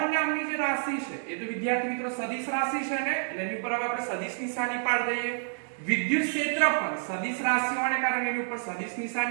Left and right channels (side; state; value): left; silent; digital silence